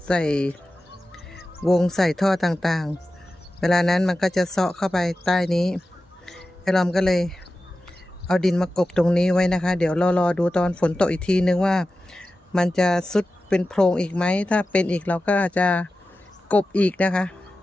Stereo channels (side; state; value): both; normal; correlation 0.94